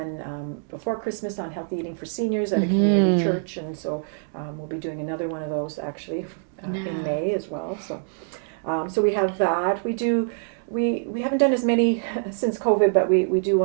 before Christmas on healthy eating for seniors at a community church, and so we'll be doing another one of those actually in May as well. So so we have that. We haven't done as many since COVID, but we do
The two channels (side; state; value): left; silent; digital silence